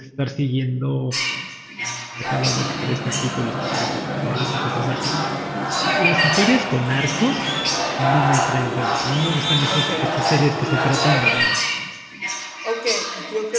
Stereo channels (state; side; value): identical; both; correlation 1.00